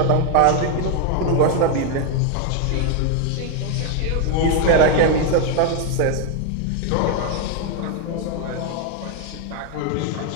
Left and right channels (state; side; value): different; both; correlation 0.01